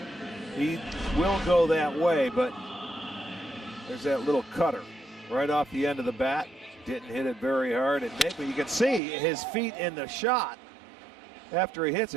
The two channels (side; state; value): left; drops out; at 9.0 s